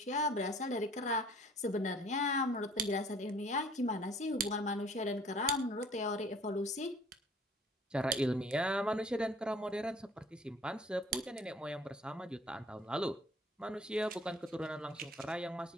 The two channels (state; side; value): normal; both; correlation 0.53